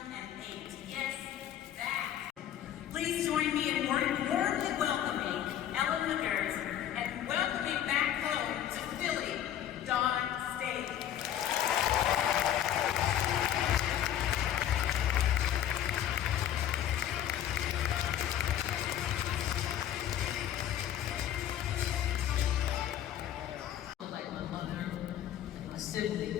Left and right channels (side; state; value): right; quieter; 11.0 dB